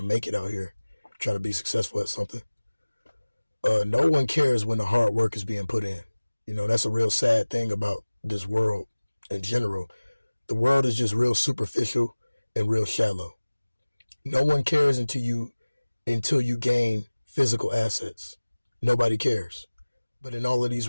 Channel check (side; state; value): both; inverted; correlation -1.00